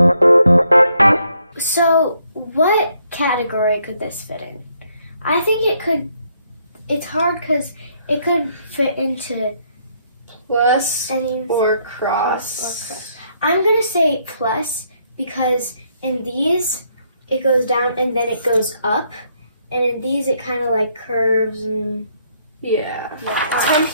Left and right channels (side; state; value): both; inverted; correlation -0.71